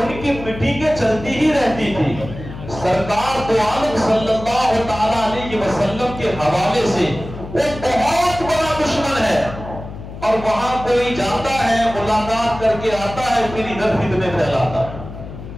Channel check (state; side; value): noise; left; hum, 12 dB below the sound